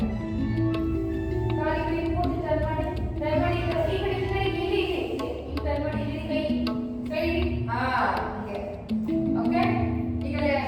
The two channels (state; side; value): identical; both; correlation 1.00